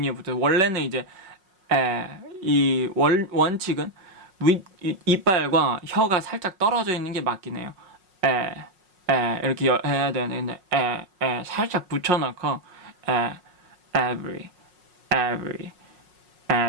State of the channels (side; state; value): left; late; 5.5 ms